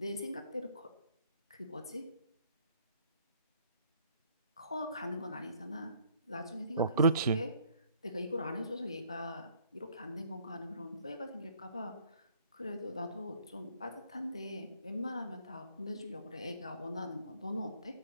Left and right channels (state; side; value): inverted; both; correlation -0.62